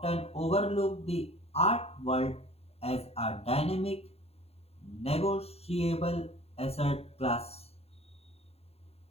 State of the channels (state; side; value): late; right; 0.29 ms